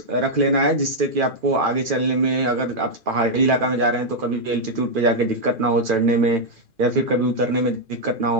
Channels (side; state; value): left; late; 2.4 ms